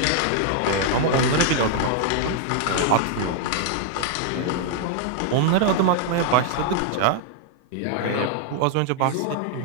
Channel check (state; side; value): different; both; correlation 0.00